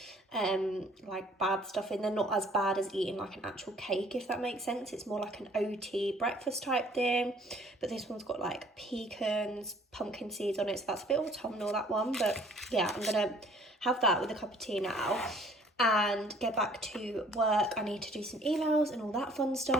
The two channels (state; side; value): normal; both; correlation 0.57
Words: like bad stuff in. They're not as bad as eating like an actual cake, if that makes sense. It's more like an OT breakfast type thing. But this one's got like pecans, pumpkin seeds on it, so that's a bit autumnal, that one. But yeah, I'm gonna have that with a cup of tea now and get back to work. I need to do some emails and all that fun